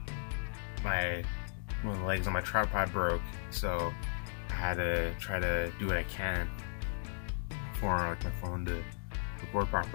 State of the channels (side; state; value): right; silent; digital silence